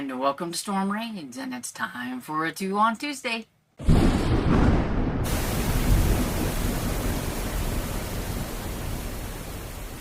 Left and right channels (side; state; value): both; identical; correlation 1.00